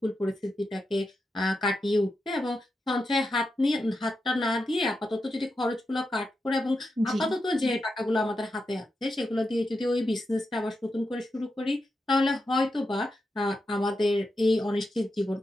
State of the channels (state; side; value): normal; both; correlation 0.88